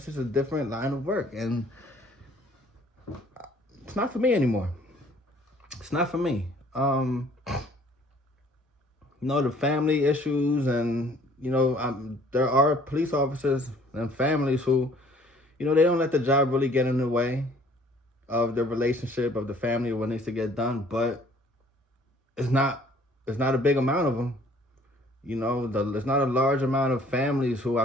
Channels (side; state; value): both; normal; correlation 0.56